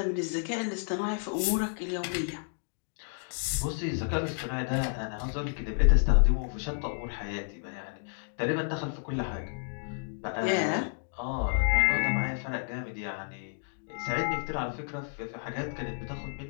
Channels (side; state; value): right; silent; digital silence